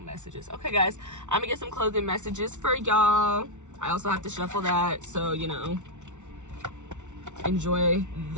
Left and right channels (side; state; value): left; late; 0.84 ms